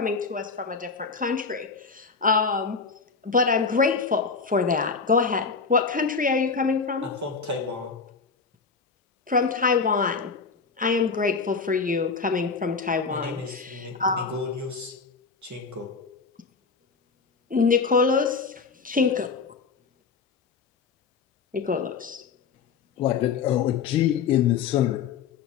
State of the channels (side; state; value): right; quieter; 5.2 dB